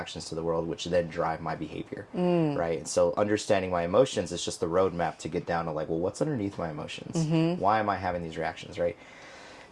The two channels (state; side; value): identical; both; correlation 1.00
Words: to the world, which then drive my behavior, right? And so understanding my emotions is just the roadmap to get down to like, well, what's underneath my emotions? Why am I having these reactions, right?